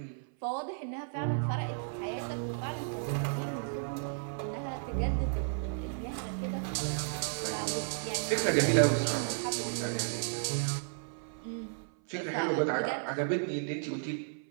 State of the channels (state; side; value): silent; left; 55 dB below the other